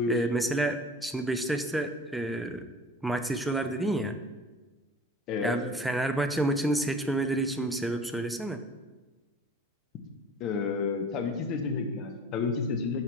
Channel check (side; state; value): both; normal; correlation 0.43